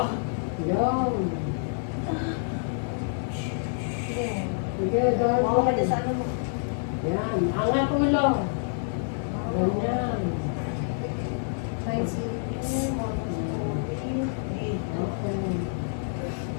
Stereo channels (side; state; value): right; silent; digital silence